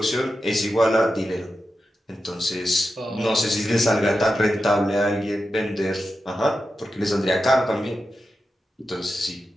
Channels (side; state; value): both; normal; correlation 0.90